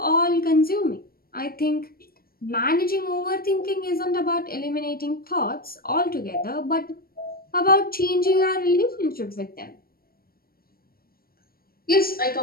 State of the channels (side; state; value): right; late; 0.43 ms